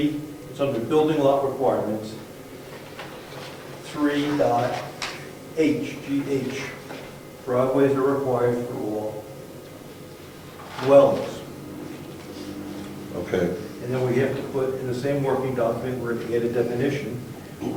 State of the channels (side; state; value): both; identical; correlation 1.00